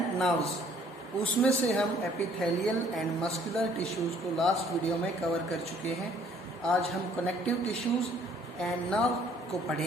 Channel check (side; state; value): both; normal; correlation 0.60